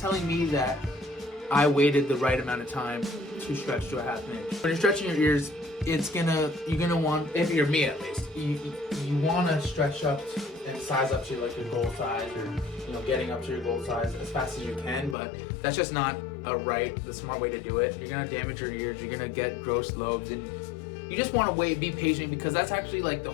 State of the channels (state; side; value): drops out; right; at 15.2 s